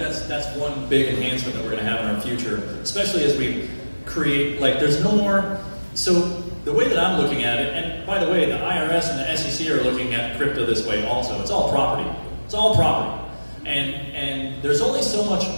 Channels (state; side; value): inverted; both; correlation -1.00